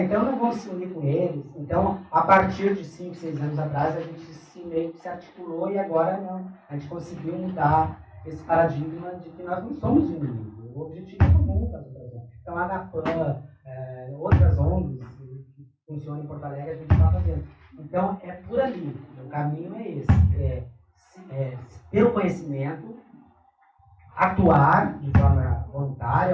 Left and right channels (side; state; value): both; identical; correlation 1.00